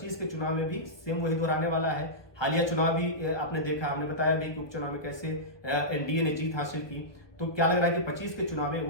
के चुनाव में भी सेम वही दोहराने वाला है? हालिया चुनाव भी आपने देखा, हमने बताया भी कि उपचुनाव में कैसे एनडीए ने जीत हासिल की। तो क्या लग रहा है कि 25 के चुनाव में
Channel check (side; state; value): right; late; 1.2 ms